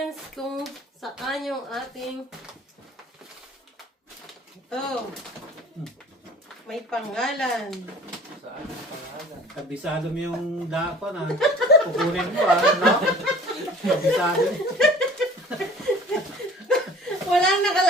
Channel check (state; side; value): normal; both; correlation 0.47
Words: Kung saan yung ating... Ito. May pangalan. Saan yung pangalan? Kabisado mo yung dako na. Kukunin mo no? Kabisado. Walang